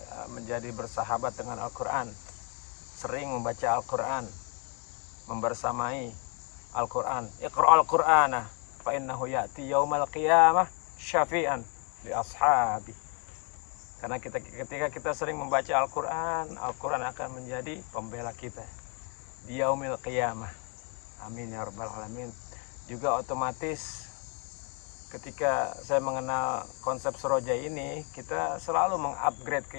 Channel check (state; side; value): quieter; right; 37.7 dB